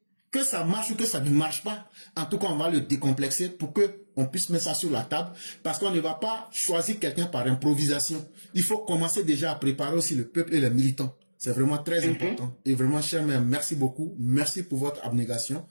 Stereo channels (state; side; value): inverted; both; correlation -1.00